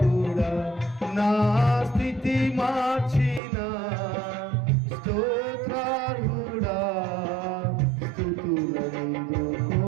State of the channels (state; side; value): drops out; left; at 3.4 s